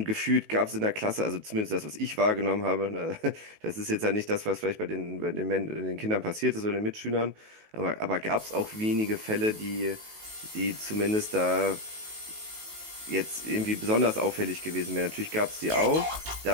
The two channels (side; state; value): left; late; 19 ms